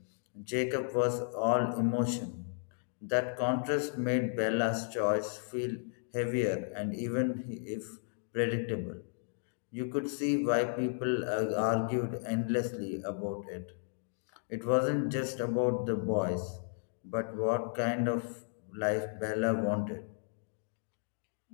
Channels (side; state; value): right; silent; digital silence